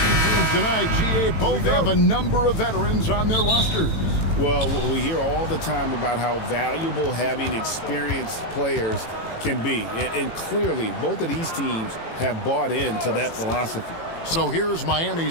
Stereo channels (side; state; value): right; late; 18 ms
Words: teams tonight, GA, both have a number of veterans on their rosters. Well, we hear all the time about how valuable having experienced players can be. And clearly, both of these teams have bought into that philosophy. So here's